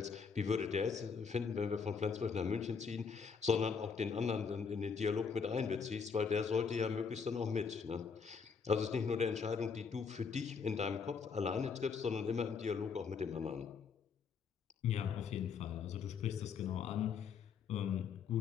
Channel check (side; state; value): right; quieter; 5.8 dB